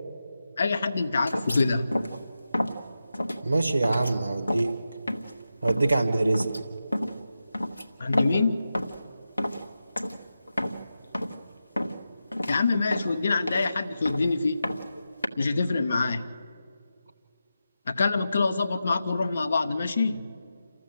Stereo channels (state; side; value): inverted; both; correlation -0.90